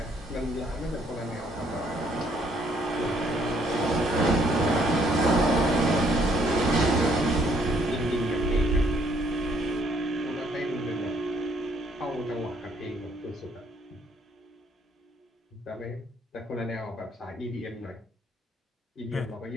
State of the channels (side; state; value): both; normal; correlation 0.67